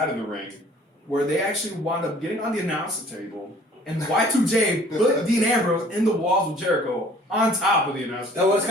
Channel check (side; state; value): both; normal; correlation 0.54